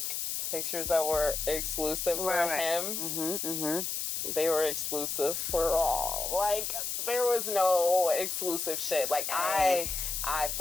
pictures that were exclusive for him. They were exclusive for all. Like, there was no exclusive shit. Like, I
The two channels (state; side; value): noise; left; hiss, 2 dB below the sound